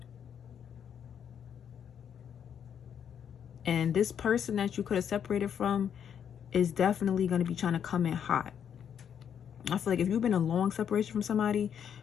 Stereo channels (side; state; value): right; quieter; 8.4 dB